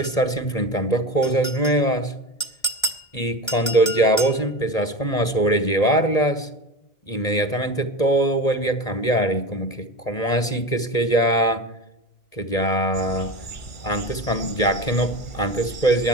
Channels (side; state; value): right; late; 1.8 ms